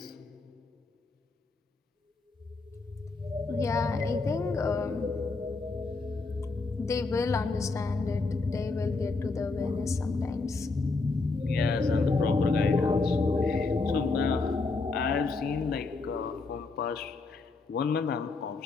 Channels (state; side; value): quieter; right; 3.8 dB